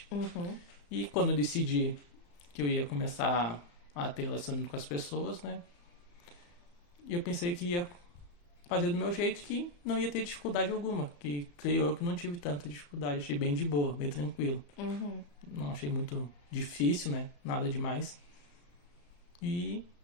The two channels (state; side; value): late; right; 34 ms